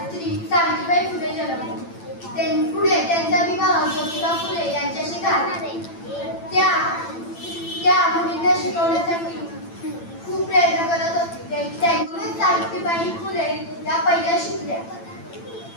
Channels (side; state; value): right; late; 8.9 ms